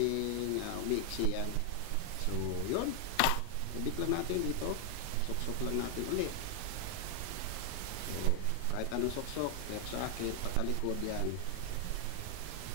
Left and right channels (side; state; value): both; different; correlation 0.00